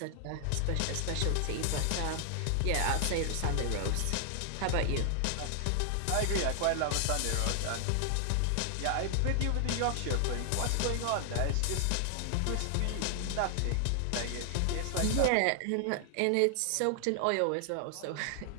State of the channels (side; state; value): both; different; correlation 0.00